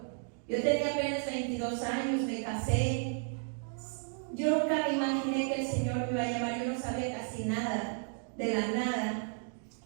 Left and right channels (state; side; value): silent; left; 56 dB below the other